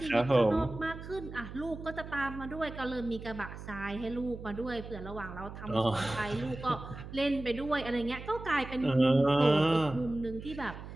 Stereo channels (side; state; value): right; noise; hum, 12 dB below the sound